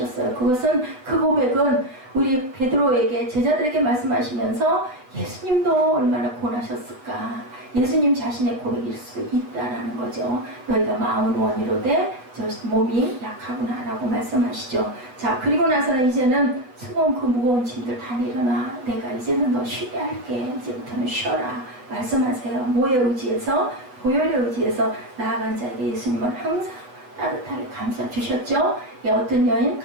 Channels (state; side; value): late; left; 7.9 ms